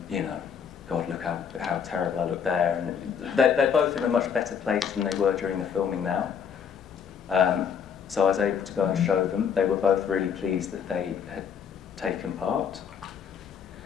you know, God, look how a much better place than they were during the filming now. So I was able to go and show them. They were both really pleased that they had taken part.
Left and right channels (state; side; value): quieter; right; 7.3 dB